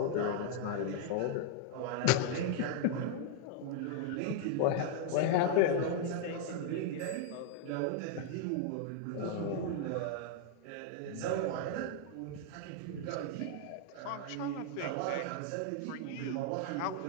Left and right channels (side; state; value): both; different; correlation 0.00